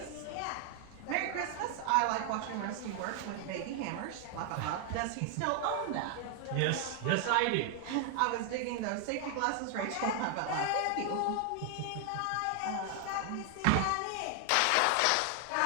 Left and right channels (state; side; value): different; both; correlation 0.00